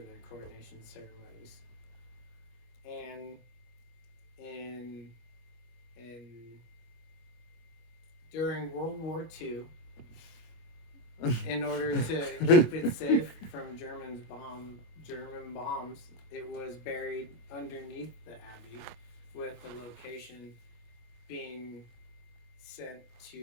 coronation ceremonies. And during World War II, in order to keep it safe from German bombs, it was buried underneath the abbey, with the location being sent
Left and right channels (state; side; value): late; right; 25 ms